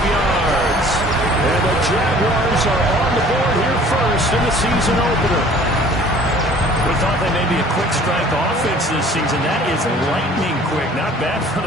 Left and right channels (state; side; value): normal; both; correlation 0.51